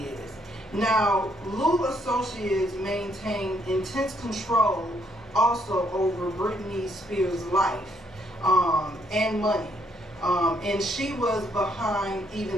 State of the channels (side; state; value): both; normal; correlation 0.71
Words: is. Now, Lou Associates maintain intense control also over Britney Spears' life and money. And she was behind